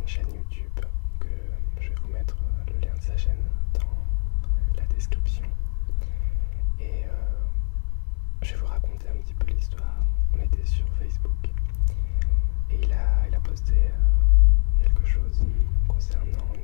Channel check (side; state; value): right; silent; digital silence